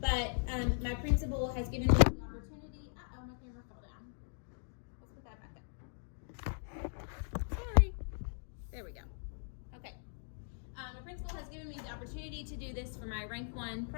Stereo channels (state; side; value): silent; right; digital silence